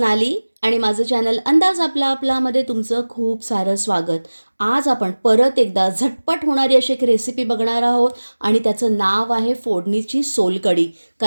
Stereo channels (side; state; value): both; inverted; correlation -1.00